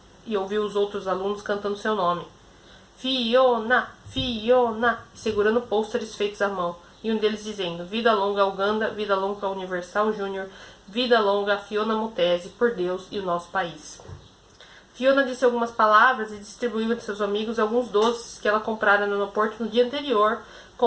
e ouviu os outros alunos cantando seu nome. Fiona, Fiona, segurando pôsteres feitos à mão, e um deles dizendo, vida longa ao Uganda, vida longa ao Universal Júnior, vida longa a Fiona Mutesi, por Deus e o nosso país. Fiona disse algumas palavras e distribuiu entre seus amigos alguns doces que ela comprara no aeroporto no dia anterior,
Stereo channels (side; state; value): both; identical; correlation 1.00